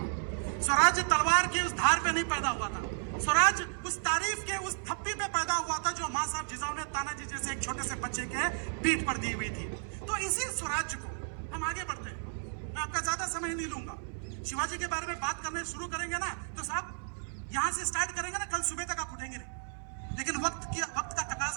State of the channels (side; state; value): left; silent; 56 dB below the other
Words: स्वराज्य तलवार की उस धार पे नहीं पैदा हुआ था, स्वराज उस तारीफ के उस थप्पी पे पैदा हुआ था जो मां साहब जिजाऊ ने तानाजी जैसे एक छोटे से बच्चे के पीठ पर दी हुई थी। तो इसी स्वराज्य को हम आगे बढ़ते हैं। मैं आपका ज्यादा समय नहीं लूंगा। शिवाजी के बारे में बात करने शुरू करेंगे ना तो साहब यहां से स्टार्ट करेंगे ना, कल सुबह तक आप उठेंगे नहीं। लेकिन वक्त का